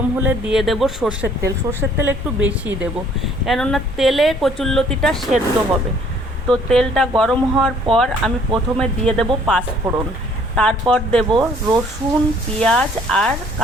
হলে দিয়ে দেব সর্ষের তেল। সর্ষের তেল একটু বেশি দেব, কেননা তেলে কচুরলতিটা সেদ্ধ হবে। তো তেলটা গরম হওয়ার পর আমি প্রথমে দিয়ে দেব পাঁচফোড়ন, তারপর দেব রসুন, পেঁয়াজ আর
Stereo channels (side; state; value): both; normal; correlation 0.59